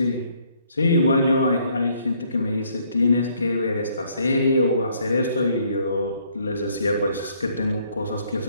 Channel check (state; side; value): inverted; both; correlation -0.66